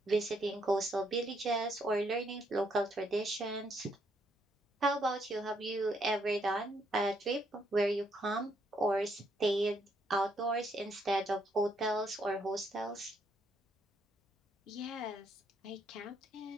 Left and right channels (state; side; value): normal; both; correlation 0.73